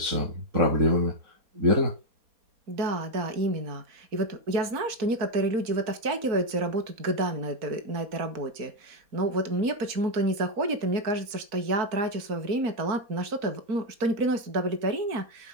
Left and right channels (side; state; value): left; late; 4.5 ms